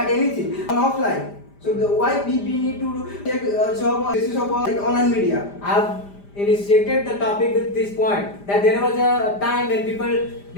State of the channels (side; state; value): right; late; 5.0 ms